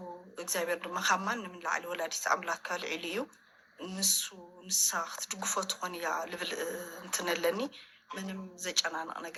እግዚአብሔር ድማ ካብ ማንም ላዕሊ ወላዲት ኣምላክ ልዕሊ እዩ ንሱ ንሳ ክትድግፎ ትኾን እያ ልብል እንትነለኒ ምንም ዘጨናንቕ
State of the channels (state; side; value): identical; both; correlation 1.00